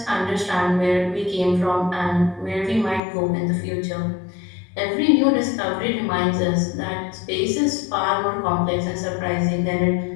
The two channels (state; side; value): drops out; right; at 3.0 s